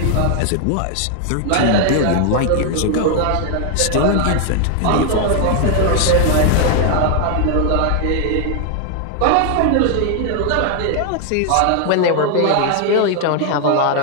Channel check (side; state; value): both; different; correlation 0.00